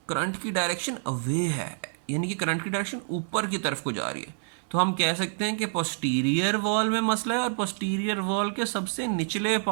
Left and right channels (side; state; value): left; silent; 60 dB below the other